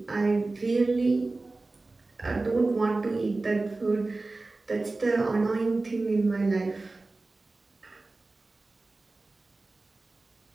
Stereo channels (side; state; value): left; quieter; 3.3 dB